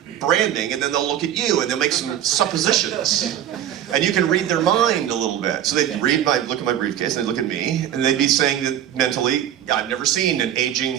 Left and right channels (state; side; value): quieter; left; 10.9 dB